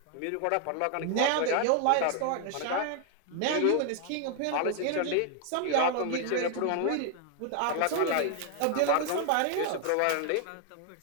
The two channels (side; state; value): both; different; correlation 0.00